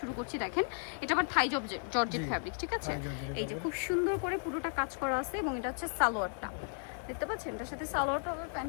করছি। দেখেন এটা আবার থাই জর্জেট ফ্যাব্রিক, ঠিক আছে? এই যে খুব সুন্দর করে পুরোটা কাজ করা আছে এবং এটা হচ্ছে সালোয়ারটা, দেখতে পাচ্ছেন? এটার সাথে সালোয়ারটা হবে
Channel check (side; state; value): right; silent; 55 dB below the other